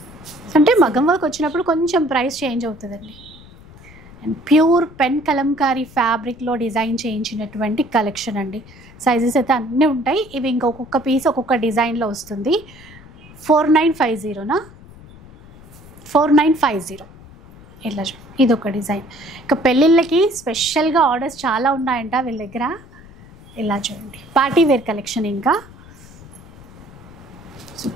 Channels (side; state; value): left; noise; rumble, 21 dB below the sound